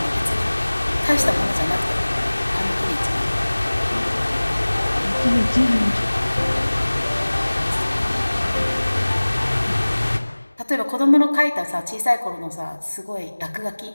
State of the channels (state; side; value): inverted; both; correlation -1.00